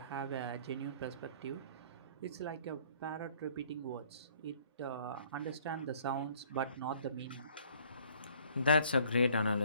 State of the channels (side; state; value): both; inverted; correlation -0.57